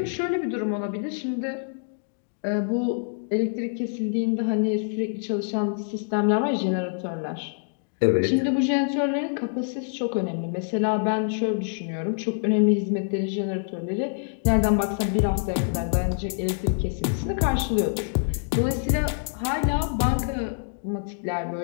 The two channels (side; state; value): right; silent; digital silence